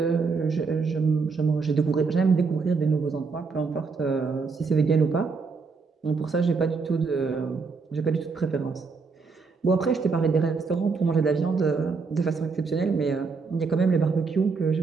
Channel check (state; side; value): quieter; left; 4.7 dB